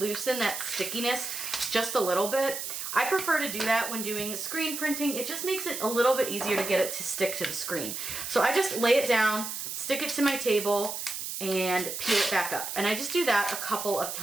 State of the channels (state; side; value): noise; right; hiss, 5 dB below the sound